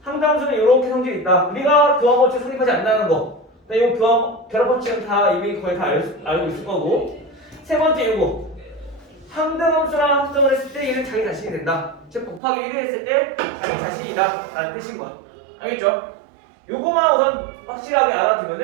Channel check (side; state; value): left; drops out; at 12.4 s